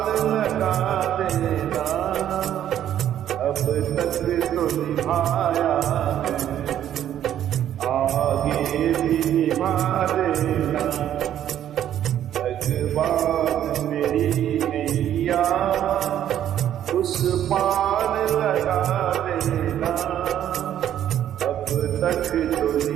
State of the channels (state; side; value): quieter; left; 10.9 dB